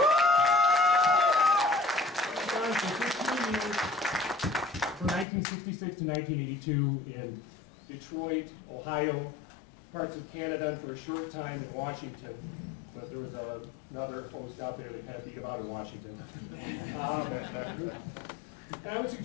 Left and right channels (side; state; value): right; drops out; at 5.2 s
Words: From 1966 to 1982 in Detroit, Ohio, parts of Canada, and for a short time in Washington. But there was another host out there that kind of beat about in Washington. And I would